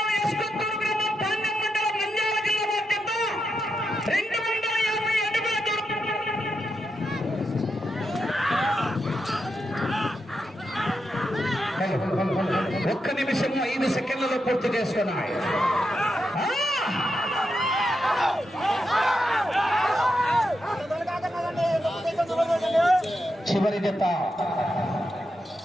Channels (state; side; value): normal; both; correlation 0.85